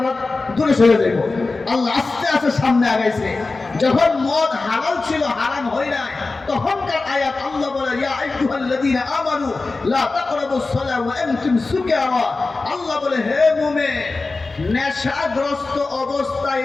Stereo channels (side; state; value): right; quieter; 3.6 dB